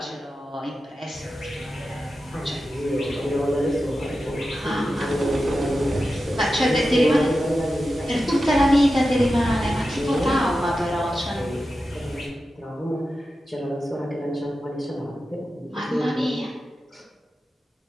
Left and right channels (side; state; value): both; normal; correlation 0.92